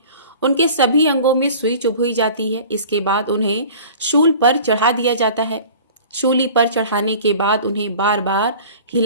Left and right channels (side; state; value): both; inverted; correlation -0.43